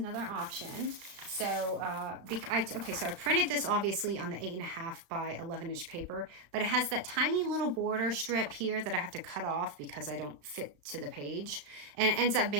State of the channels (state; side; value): late; left; 35 ms